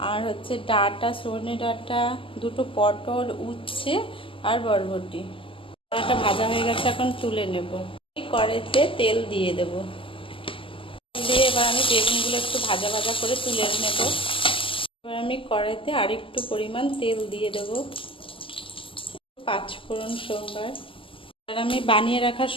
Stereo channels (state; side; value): late; right; 0.25 ms